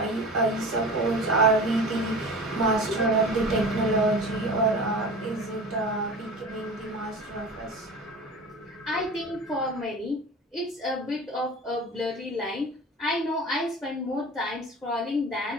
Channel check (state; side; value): normal; both; correlation 0.35